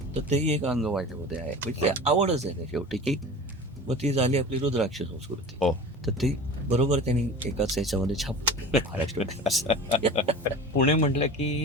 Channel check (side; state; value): both; normal; correlation 0.36